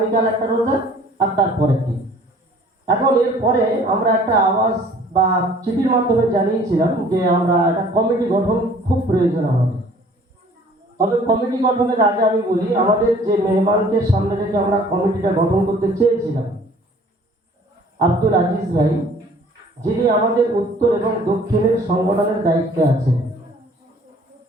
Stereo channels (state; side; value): normal; both; correlation 0.53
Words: একটা রোজা, আর তারপরের দিন। এখন এরপরে আমরা একটা আওয়াজ বা চিঠির মাধ্যমে জানিয়েছিলাম যে আমরা একটা কমিটি গঠন খুব প্রয়োজন আমাদের। তবে কমিটি গঠনের আগে আমি বলি, আমাদের যে মেহমানকে সামনে রেখে আমরা কমিটিটা গঠন করতে চেয়েছিলাম, আব্দুল আজিজ ভাই, যিনি আমাদের উত্তর এবং দক্ষিণের সংগঠনের দায়িত্বে আছেন।